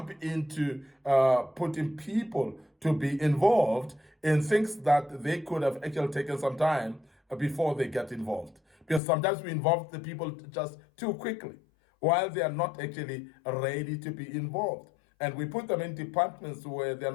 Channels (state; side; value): drops out; right; at 9.0 s